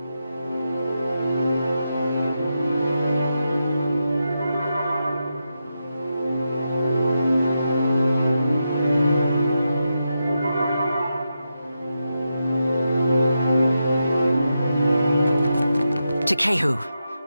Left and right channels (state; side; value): inverted; both; correlation -0.87